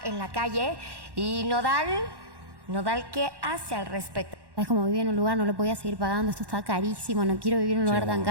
en la calle y Nodal, ¿qué hace al respecto? Es como vivir en un lugar, no lo podía seguir pagando, esto está carísimo, no quiero vivir en un lugar tan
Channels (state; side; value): late; left; 1.1 ms